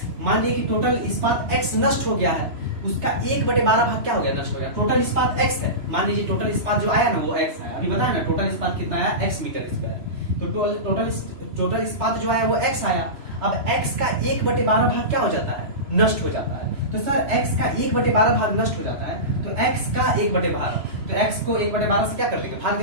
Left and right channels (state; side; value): late; left; 3.0 ms